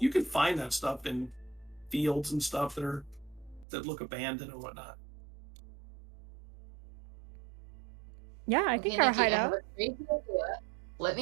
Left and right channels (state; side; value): drops out; left; at 3.7 s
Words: can find that stuff in fields and stuff that look abandoned and whatnot. Yeah, I Okay, think our Nikki, I have hideout. a crazy idea. Let